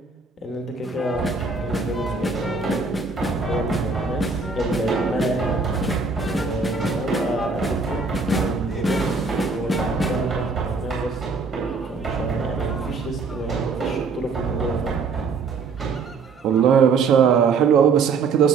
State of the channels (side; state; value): left; quieter; 4.6 dB